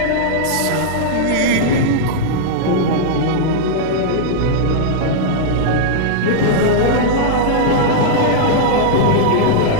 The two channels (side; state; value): both; different; correlation -0.02